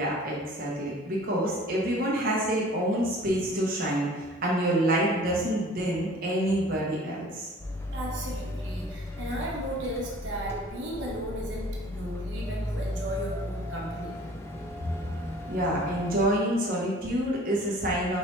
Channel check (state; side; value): normal; both; correlation 0.49